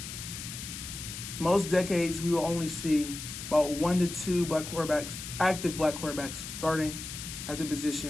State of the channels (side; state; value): left; noise; hiss, 9 dB below the sound